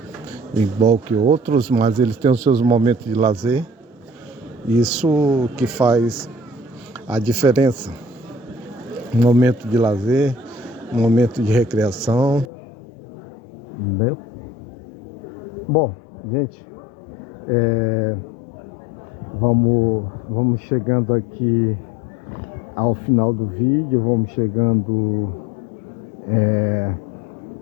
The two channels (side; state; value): right; drops out; at 12.5 s